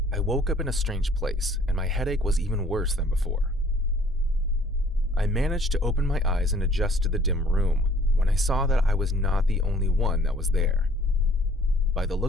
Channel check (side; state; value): both; normal; correlation 0.56